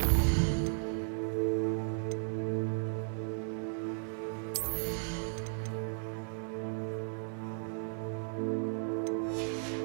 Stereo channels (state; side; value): silent; left; digital silence